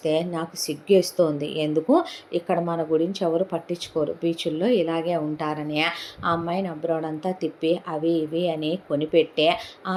నాకు సిగ్గేస్తోంది, ఎందుకు ఇక్కడ మన గురించి ఎవరు పట్టించుకోరు, బీచుల్లో ఇలాగే ఉంటారని ఆ అమ్మాయిని అబ్రాడంతా తిప్పి అవి ఇవి అని కొనిపెట్టే, ఆ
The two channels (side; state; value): both; identical; correlation 1.00